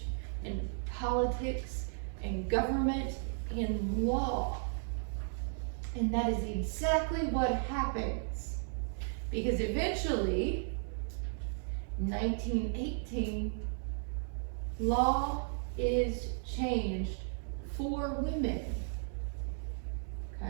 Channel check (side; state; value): left; silent; 54 dB below the other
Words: in politics and government and law. And that is exactly what happens. Because eventually, 1918, law is changed for women.